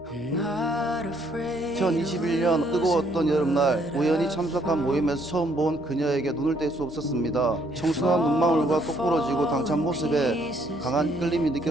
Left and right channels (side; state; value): both; normal; correlation 0.68